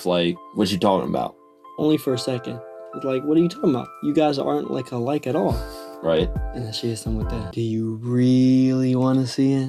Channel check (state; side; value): identical; both; correlation 1.00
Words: like, what you talking about? Only for a second. It's like, what are you talking about? You guys aren't like alike at all. Right. And then she hits him with that. Do you really want to see